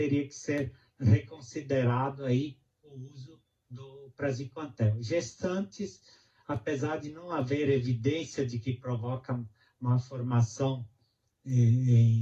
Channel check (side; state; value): both; identical; correlation 1.00